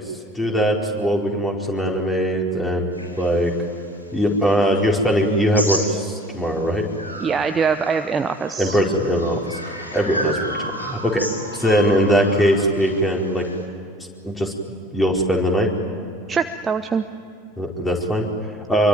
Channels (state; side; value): normal; both; correlation 0.49